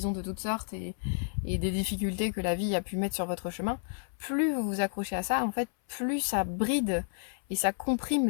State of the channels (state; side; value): silent; right; 57 dB below the other